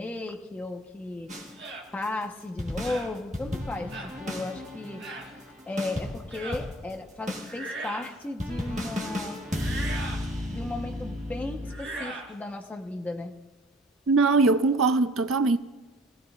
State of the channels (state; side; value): normal; both; correlation 0.51